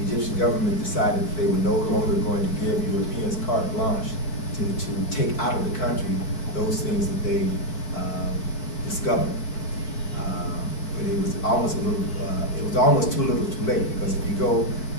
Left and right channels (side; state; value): right; late; 4.6 ms